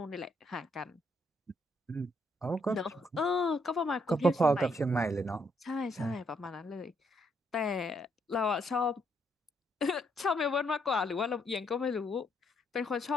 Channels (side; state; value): both; normal; correlation 0.73